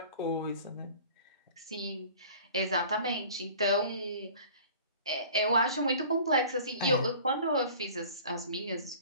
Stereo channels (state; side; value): inverted; both; correlation -0.46